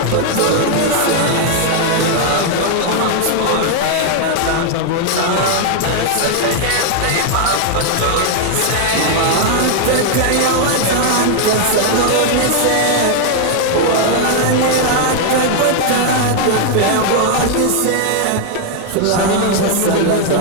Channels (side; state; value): both; different; correlation 0.00